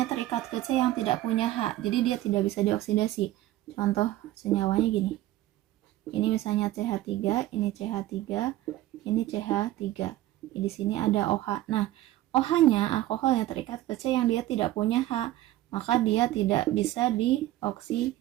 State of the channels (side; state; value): left; quieter; 15.3 dB